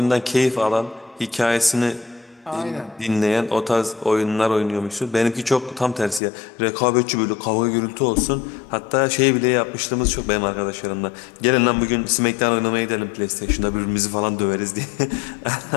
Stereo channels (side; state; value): right; drops out; at 6.2 s